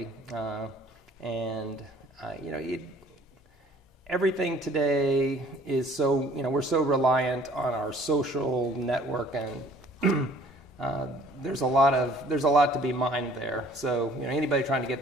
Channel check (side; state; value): both; normal; correlation 0.54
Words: Everything today is so, we're so reliant on our social network, and there's a lot to be mined there. So, anybody trying to get